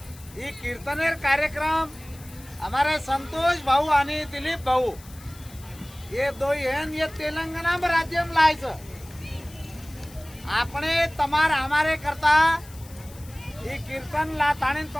ही कीर्तनेर कार्यक्रम हमारे संतोष भाऊ आणि दिलीप भाऊ ये दो ये तेलंगाना में राज्य में लायच आपने तमार हमारे करता ही कीर्तन ला ताणी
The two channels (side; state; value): left; noise; hiss, 21 dB below the sound